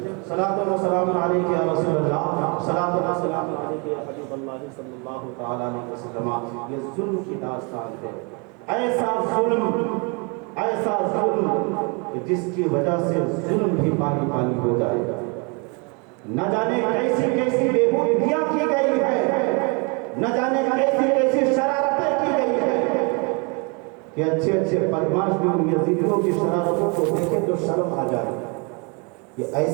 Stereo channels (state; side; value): quieter; left; 32.9 dB